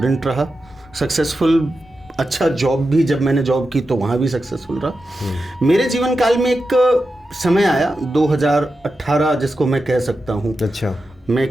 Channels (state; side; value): normal; both; correlation 0.90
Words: रहा, सक्सेसफुल अच्छा जॉब भी, जब मैंने जॉब की तो वहाँ भी सक्सेसफुल रहा। मेरे जीवन काल में एक समय आया 2018 जिसको मैं कह सकता हूँ। अच्छा। मैं